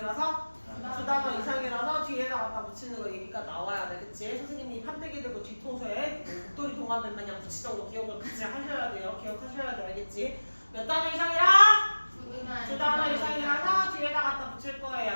두 단어 이상이라서 뒤에다 갖다 붙이는 거 얘기가 나와야 돼. 그치? 선생님이 판때기 들고 뒤통수에 목도리 동화면 마냥 붙이던 거 기억을 같이 하셔야 돼요. 기억하셔야 돼. 알겠지? 몇 단어 이상이라? 두 단어 이상이라서 뒤에다 갖다 붙일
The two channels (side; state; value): both; inverted; correlation -1.00